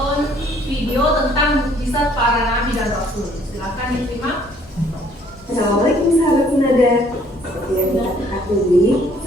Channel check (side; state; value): both; normal; correlation 0.61